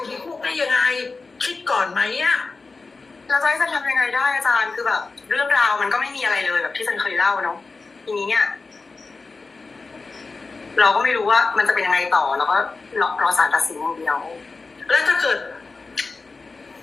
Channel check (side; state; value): right; quieter; 4.0 dB